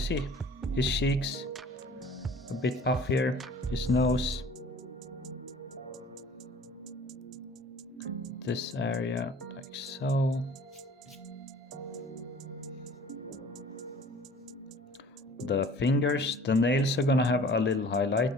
his cheeks a bit puffier, his nose, this area like so. The fingers, the nails are gonna have a little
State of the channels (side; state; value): both; normal; correlation 0.48